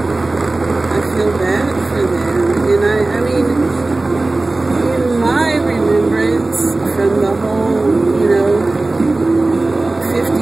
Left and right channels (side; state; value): left; quieter; 3.1 dB